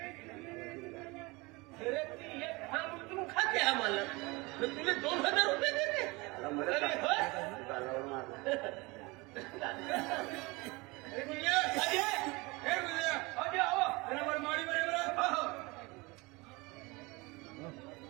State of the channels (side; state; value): left; quieter; 24.7 dB